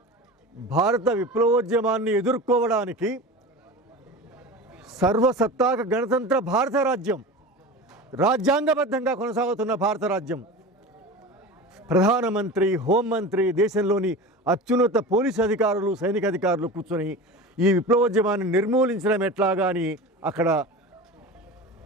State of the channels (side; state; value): both; normal; correlation 0.32